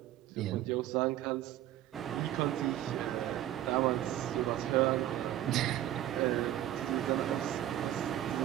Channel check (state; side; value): quieter; left; 12.9 dB